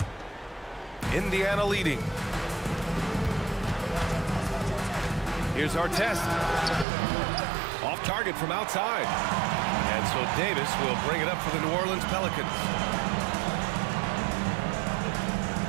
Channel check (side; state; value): left; drops out; at 6.9 s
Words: Indiana leading. Here's Artest. Off target from outside. And so Davis will bring it up for the New Orleans Pelicans.